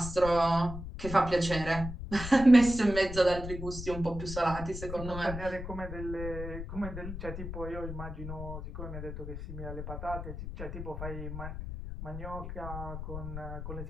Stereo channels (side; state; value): left; noise; rumble, 8 dB below the sound